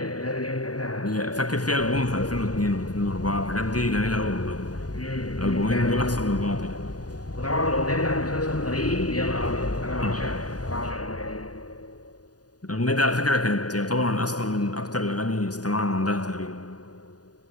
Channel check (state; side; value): late; right; 0.68 ms